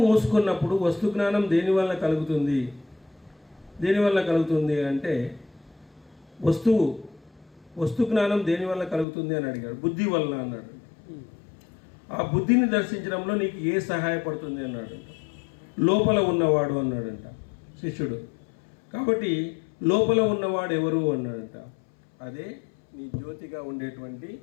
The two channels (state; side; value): drops out; right; at 9.1 s